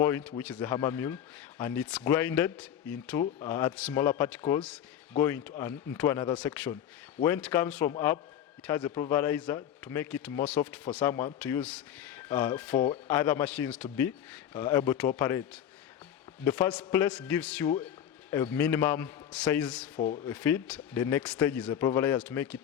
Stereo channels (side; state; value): right; quieter; 9.9 dB